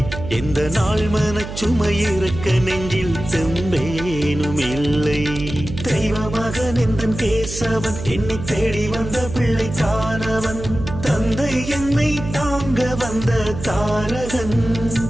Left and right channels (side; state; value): right; noise; hum, 9 dB below the sound